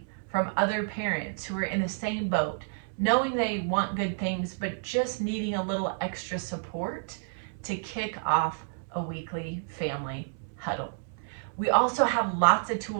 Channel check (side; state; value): left; silent; 58 dB below the other